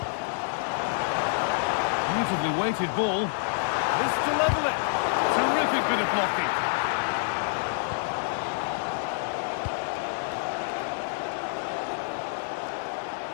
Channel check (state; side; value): silent; right; 60 dB below the other